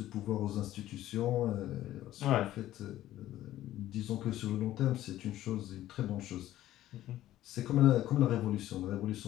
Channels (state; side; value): quieter; right; 13.9 dB